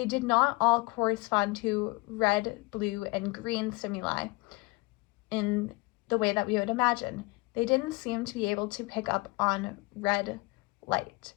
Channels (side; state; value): right; quieter; 24.8 dB